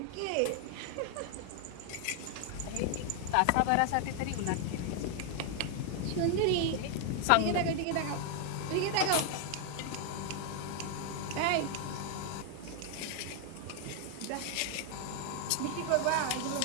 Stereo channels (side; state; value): both; different; correlation 0.00